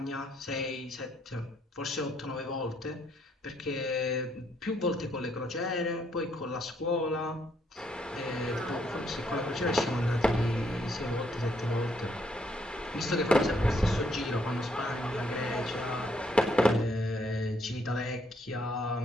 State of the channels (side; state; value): both; normal; correlation 0.72